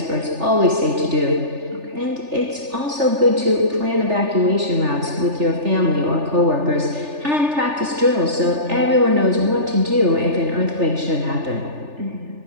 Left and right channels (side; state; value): left; late; 3.4 ms